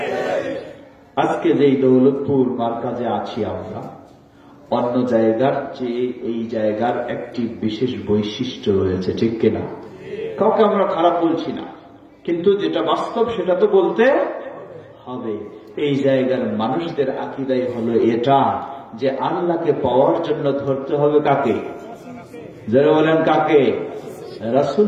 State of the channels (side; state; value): both; identical; correlation 1.00